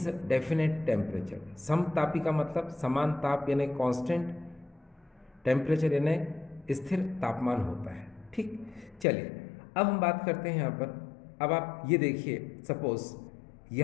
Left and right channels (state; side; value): drops out; right; at 9.1 s